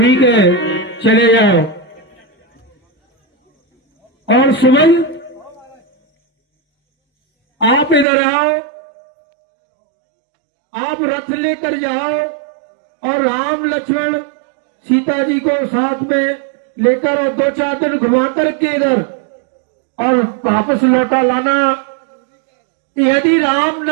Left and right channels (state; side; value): drops out; left; at 8.1 s